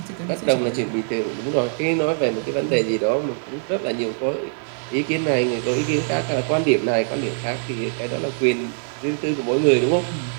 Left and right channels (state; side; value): silent; left; digital silence